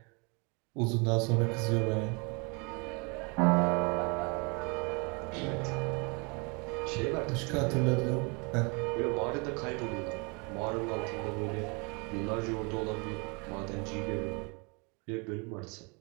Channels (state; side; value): quieter; left; 31.8 dB